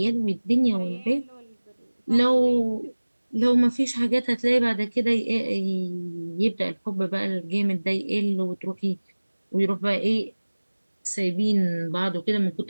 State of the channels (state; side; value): inverted; both; correlation -1.00